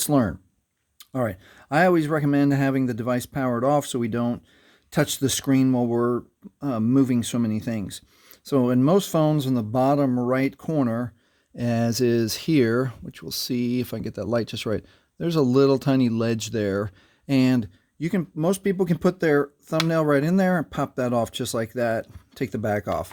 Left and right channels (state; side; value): identical; both; correlation 1.00